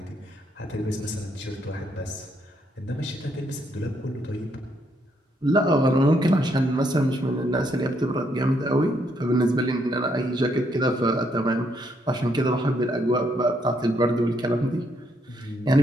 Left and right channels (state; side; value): normal; both; correlation 0.73